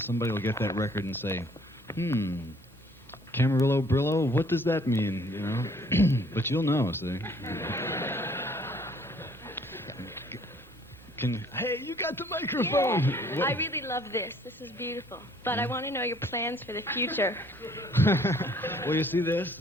will get that record and say, Camarillo, Brillo, what does that mean, you know? But you'll know, see. Hey, you got the microphone! Yeah, I really love this. This is beautiful. But I want to know your plans for the future. Well, you see this?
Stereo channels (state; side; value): normal; both; correlation 0.59